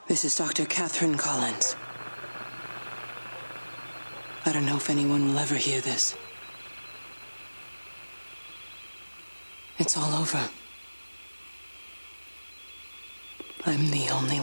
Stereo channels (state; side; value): inverted; both; correlation -1.00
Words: This is Dr. Catherine Collins. I don't know if anyone will ever hear this. It's all over. I'm the only